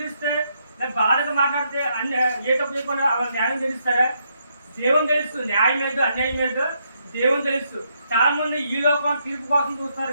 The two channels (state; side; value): inverted; both; correlation -0.76